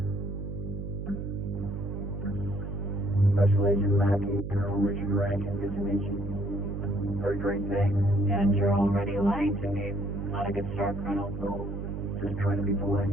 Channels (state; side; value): noise; right; hum, 6 dB below the sound